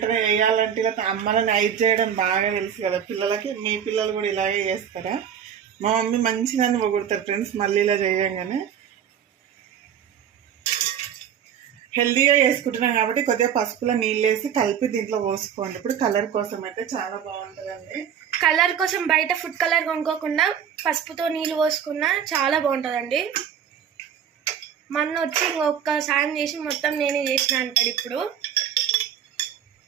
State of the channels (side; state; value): left; quieter; 8.6 dB